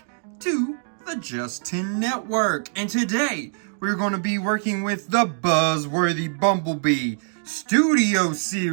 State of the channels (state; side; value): silent; left; digital silence